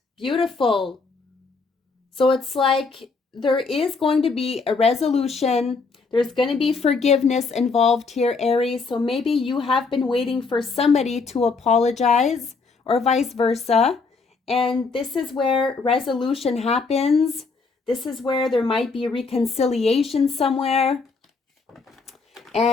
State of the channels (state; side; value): quieter; right; 4.4 dB